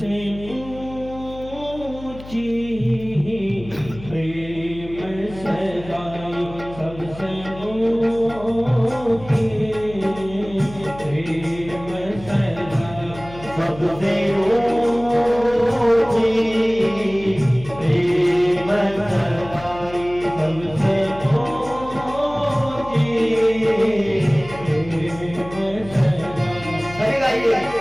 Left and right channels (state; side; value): noise; left; hum, 16 dB below the sound